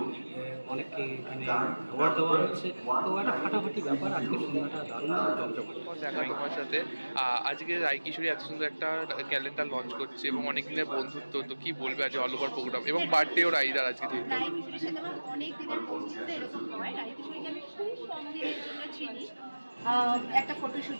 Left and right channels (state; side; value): inverted; both; correlation -1.00